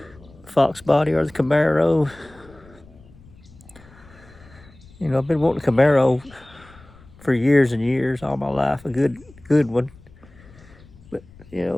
Fox body or the Camaro. I've been wanting a Camaro for years and years, all my life, a good one. But,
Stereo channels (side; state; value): left; noise; rumble, 24 dB below the sound